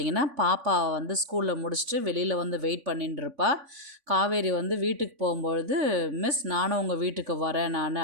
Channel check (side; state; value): left; late; 3.5 ms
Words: பாப்பா ஸ்கூலில் முடிச்சுட்டு வெளியில் வெயிட் பண்ணின்னு இருப்பா. காவேரி வீட்டுக்கு போகும்பொழுது, மிஸ் நானும் உங்கள் வீட்டுக்கு வரேன் நான்